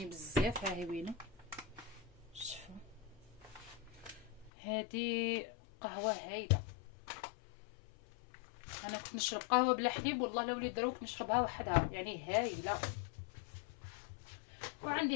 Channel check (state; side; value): drops out; right; at 4.5 s